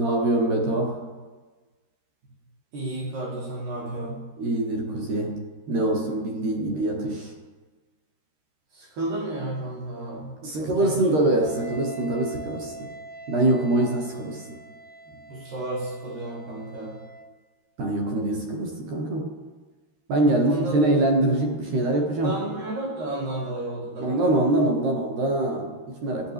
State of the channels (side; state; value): left; late; 13 ms